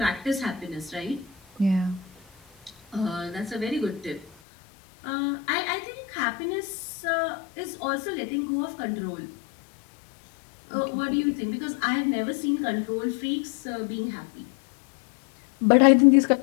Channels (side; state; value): right; drops out; at 4.2 s